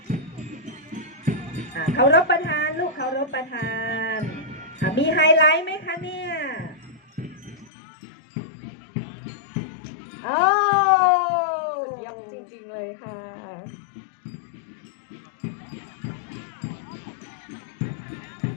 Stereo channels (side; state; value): right; drops out; at 7.7 s